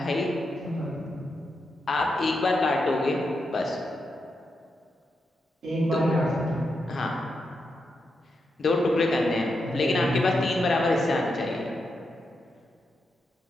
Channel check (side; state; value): both; normal; correlation 0.85